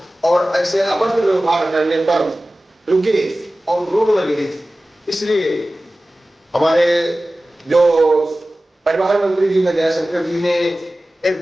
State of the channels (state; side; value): normal; both; correlation 0.96